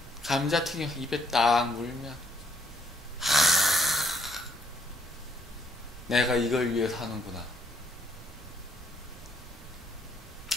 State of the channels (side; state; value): both; normal; correlation 0.69